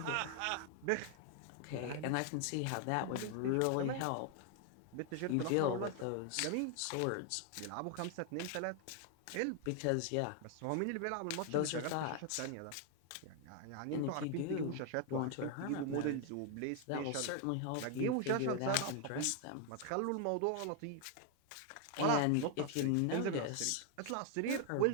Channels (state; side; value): different; both; correlation 0.00